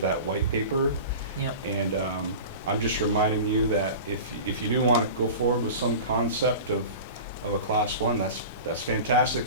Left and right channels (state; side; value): inverted; both; correlation -0.35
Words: that white paper. Yep. And I'm just reminding you that if you do want to go forward with some concept of a class one, that's